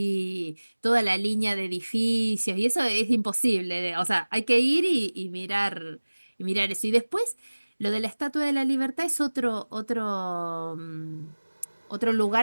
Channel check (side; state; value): both; inverted; correlation -1.00